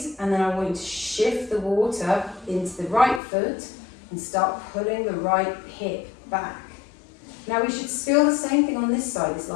and then I want you to shift the water into the right foot and start pulling the right hip back. Now we should feel the same thing on this side. It's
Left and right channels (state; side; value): drops out; right; at 3.2 s